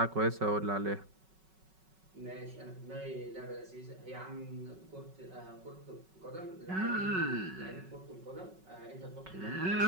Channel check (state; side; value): late; left; 5.3 ms